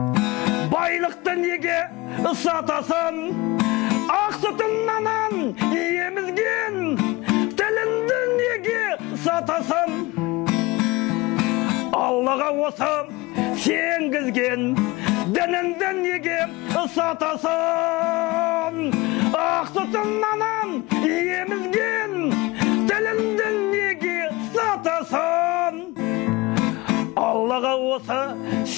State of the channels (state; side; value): quieter; right; 22.1 dB